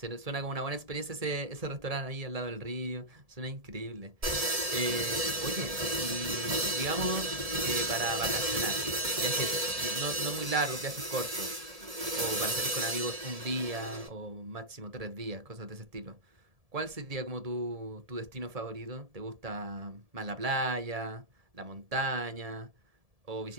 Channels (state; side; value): late; left; 1.7 ms